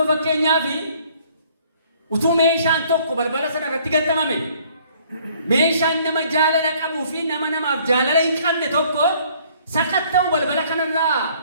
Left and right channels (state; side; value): inverted; both; correlation -0.59